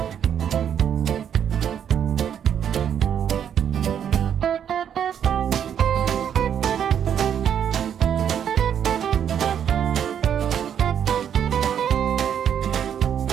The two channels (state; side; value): quieter; left; 8.9 dB